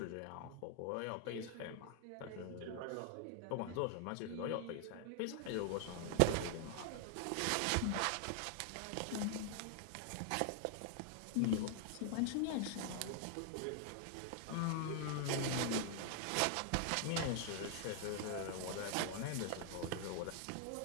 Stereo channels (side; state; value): both; different; correlation 0.00